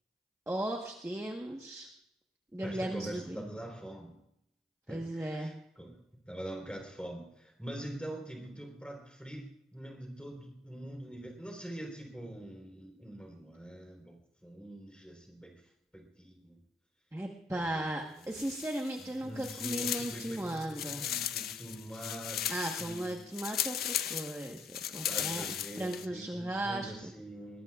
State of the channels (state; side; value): normal; both; correlation 0.72